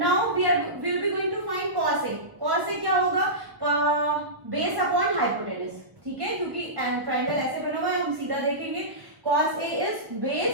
we will be going to find cos A. Cos A क्या होगा? Base upon hypotenuse. ठीक है, क्योंकि triangle ऐसे बना हुआ है, हम सीधा देखेंगे. Cos A is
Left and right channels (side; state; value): left; late; 1.0 ms